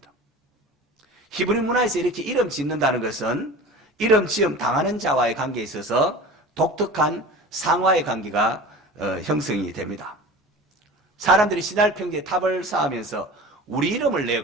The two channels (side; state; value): both; normal; correlation 0.37